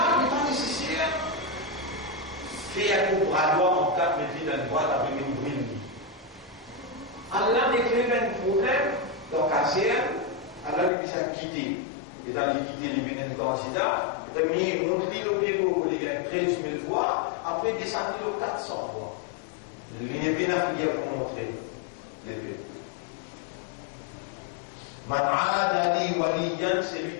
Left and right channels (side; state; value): right; drops out; at 10.9 s